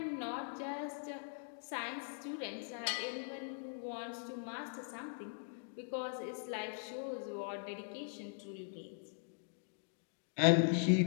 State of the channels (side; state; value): right; silent; digital silence